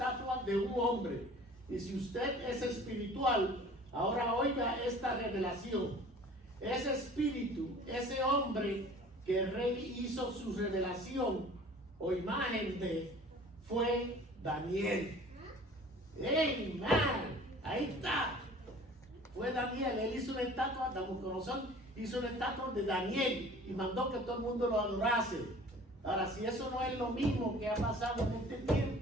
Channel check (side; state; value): both; normal; correlation 0.47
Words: de un hombre. Y si usted es espiritual, ahora oiga esta revelación. Ese espíritu, ese hombre que el rey hizo su revelación o imagen de, fue Daniel. ¡Ey, man! Ahí está. Fue Daniel. Él hizo una estatua, Nabucodonosor hizo una estatua de Daniel y mandó que todo el mundo lo adorase. Ahora, si eso no es lo mismo que ha pasado en este